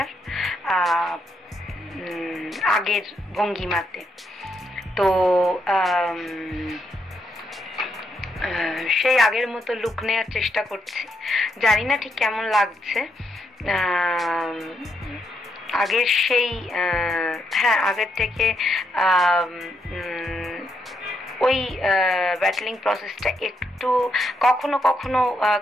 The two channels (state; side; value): normal; both; correlation 0.79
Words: আগের ভঙ্গিমাতে। তো সেই আগের মতো লুক নেওয়ার চেষ্টা করছি। জানি না ঠিক কেমন লাগছে। আগের সেই আগের থেকে ওই ব্যাটলিং প্রসেসটা একটু কখনো কখনো